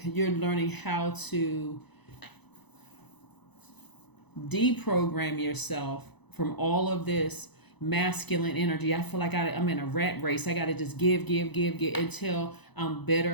how to deprogram yourself from all of this masculine energy. I feel like I'm in a rat race. I got to just give until I'm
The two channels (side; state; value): right; late; 0.99 ms